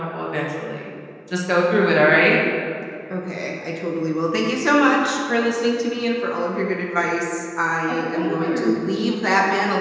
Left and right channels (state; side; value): identical; both; correlation 1.00